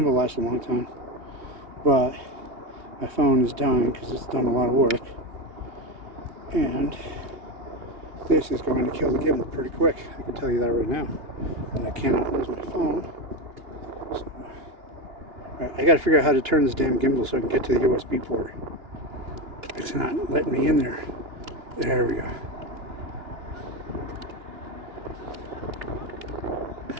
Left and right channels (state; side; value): late; left; 2.9 ms